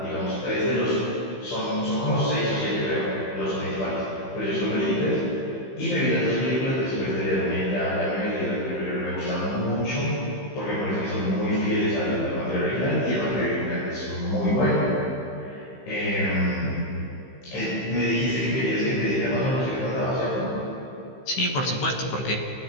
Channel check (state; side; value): late; right; 15 ms